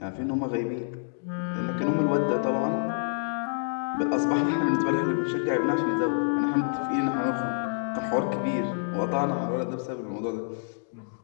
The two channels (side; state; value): right; silent; digital silence